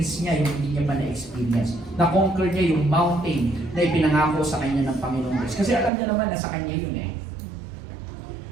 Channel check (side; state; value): left; drops out; at 5.9 s